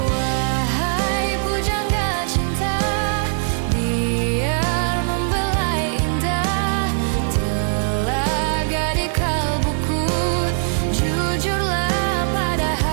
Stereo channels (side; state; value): left; silent; digital silence